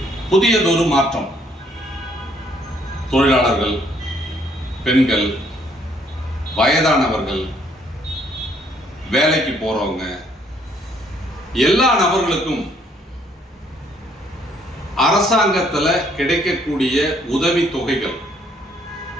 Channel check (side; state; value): both; normal; correlation 0.66